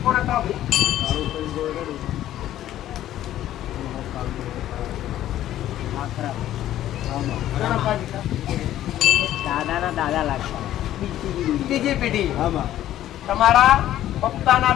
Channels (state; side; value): quieter; right; 12.8 dB